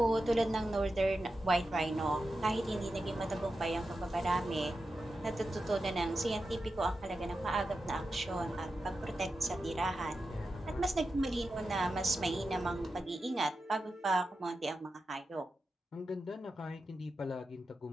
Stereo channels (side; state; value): both; normal; correlation 0.91